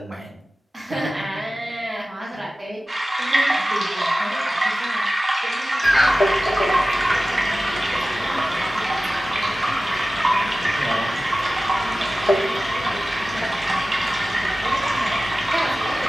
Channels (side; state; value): both; normal; correlation 0.96